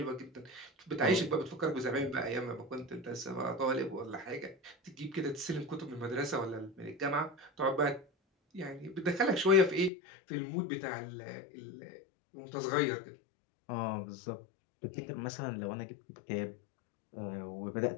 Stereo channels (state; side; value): drops out; right; at 9.9 s